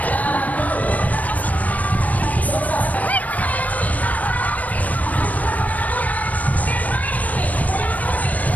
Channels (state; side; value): late; right; 0.073 ms